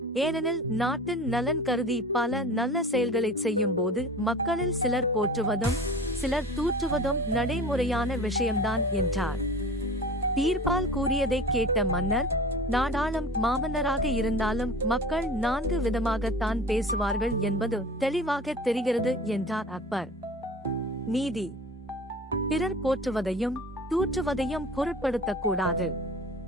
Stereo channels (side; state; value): both; normal; correlation 0.39